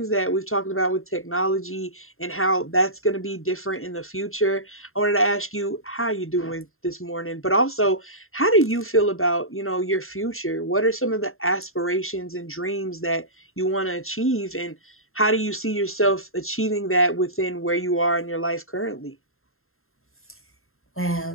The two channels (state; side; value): late; right; 0.61 ms